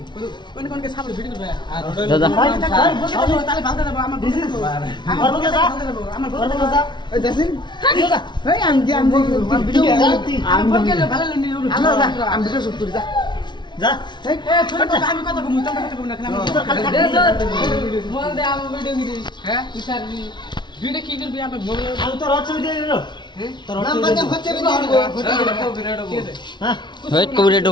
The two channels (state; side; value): late; right; 0.22 ms